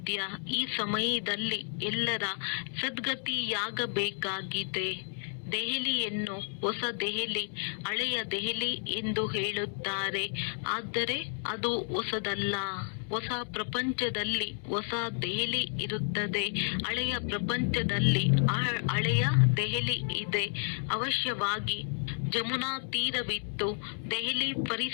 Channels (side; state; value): right; silent; 57 dB below the other